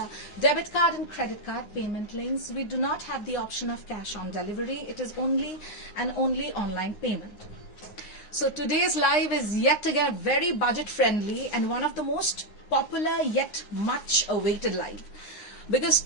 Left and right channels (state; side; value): late; right; 9.6 ms